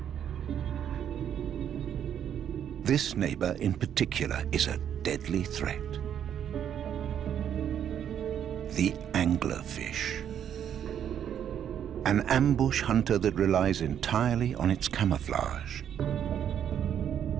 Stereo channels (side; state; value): left; quieter; 9.3 dB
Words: This neighbor in particular is a deadly threat. The anglerfish. An ambush hunter that relies entirely on its camouflage.